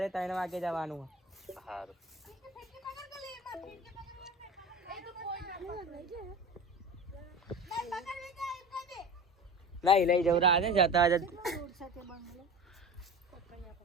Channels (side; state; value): both; normal; correlation 0.33